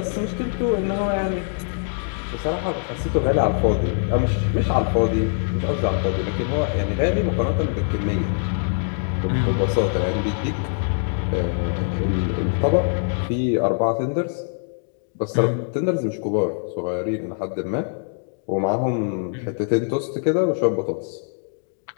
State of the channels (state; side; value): silent; right; digital silence